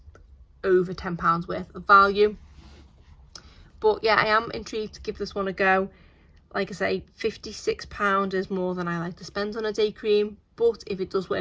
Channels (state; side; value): identical; both; correlation 1.00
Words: over £10 worth of value. But yeah, I am intrigued to give this one a go. Like I say, £56 is more than I like to spend on a day cream, but if it does